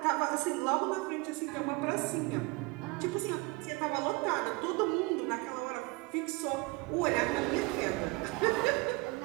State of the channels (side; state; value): left; quieter; 25.5 dB